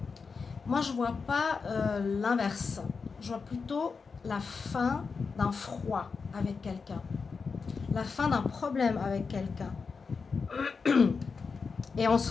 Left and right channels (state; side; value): quieter; right; 5.0 dB